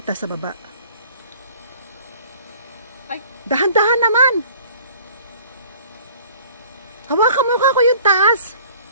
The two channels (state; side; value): inverted; both; correlation -0.51